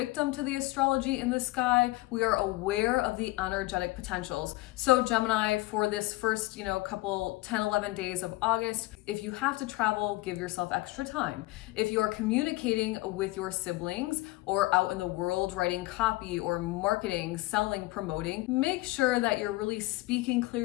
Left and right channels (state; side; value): quieter; right; 20.4 dB